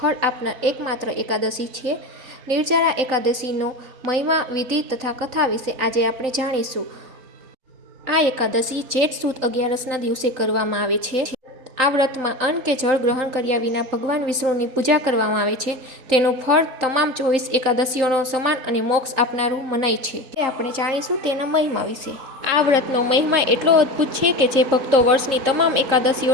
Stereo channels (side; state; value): left; late; 3.8 ms